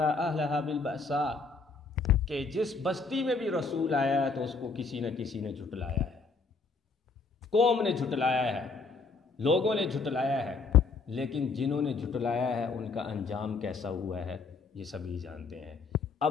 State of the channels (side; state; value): right; quieter; 4.3 dB